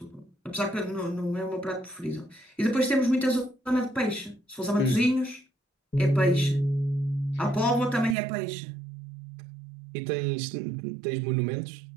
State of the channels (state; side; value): drops out; left; at 8.2 s